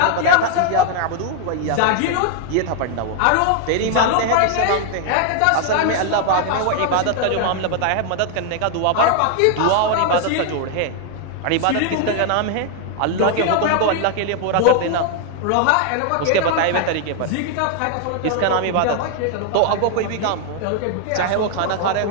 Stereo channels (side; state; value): both; different; correlation 0.00